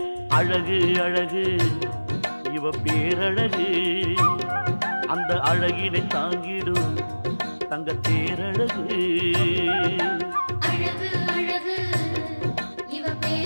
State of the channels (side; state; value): both; inverted; correlation -1.00